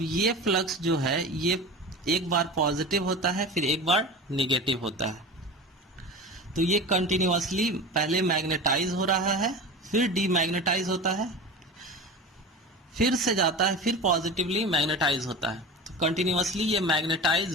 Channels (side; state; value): both; normal; correlation 0.31